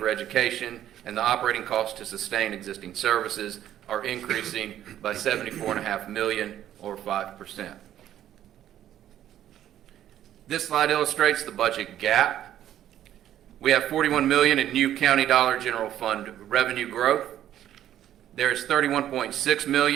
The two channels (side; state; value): left; quieter; 11.6 dB